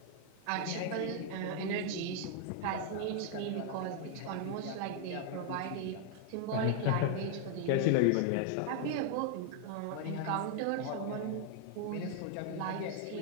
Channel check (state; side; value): different; both; correlation 0.00